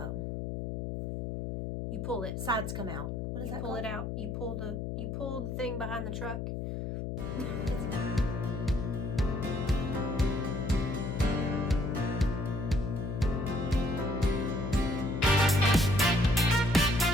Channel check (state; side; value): noise; left; hum, 4 dB below the sound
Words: you pull it. Sides come out. What is that called? You pull it out. You pull the thing behind the truck.